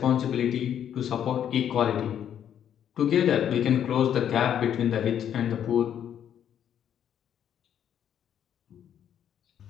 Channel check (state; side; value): quieter; right; 9.5 dB